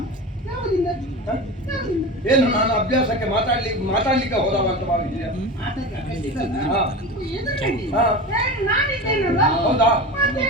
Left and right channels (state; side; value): normal; both; correlation 0.28